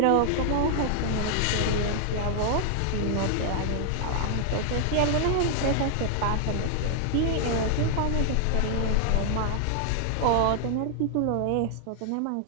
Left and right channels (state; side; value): different; both; correlation 0.00